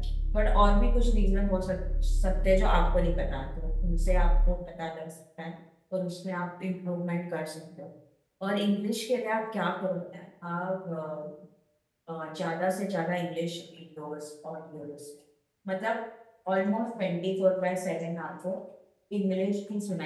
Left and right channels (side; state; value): both; identical; correlation 1.00